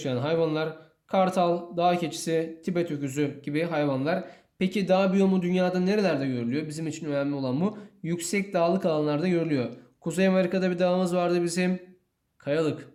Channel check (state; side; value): identical; both; correlation 1.00